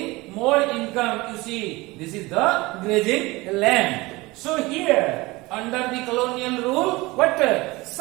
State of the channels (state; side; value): quieter; left; 21.9 dB